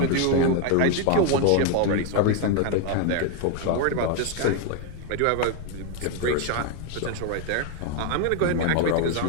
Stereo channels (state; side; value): different; both; correlation 0.01